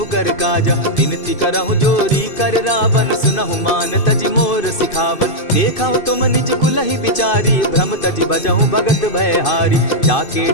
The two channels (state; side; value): late; right; 2.5 ms